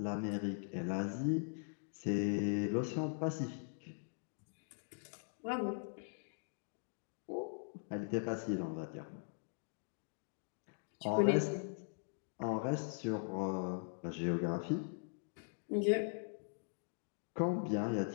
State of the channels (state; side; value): silent; right; digital silence